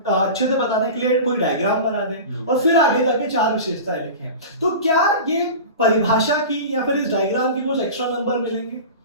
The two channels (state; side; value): inverted; both; correlation -0.32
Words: से बताने के लिए कोई डायग्राम बना दें और फिर आगे जाके 4 विशेषताएं लिखें। तो क्या ये परिभाषा की या फिर इस डायग्राम की कुछ एक्स्ट्रा नंबर मिलेंगे?